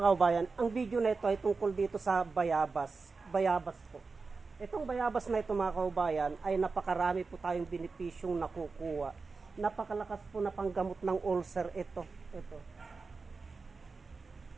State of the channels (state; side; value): quieter; left; 4.3 dB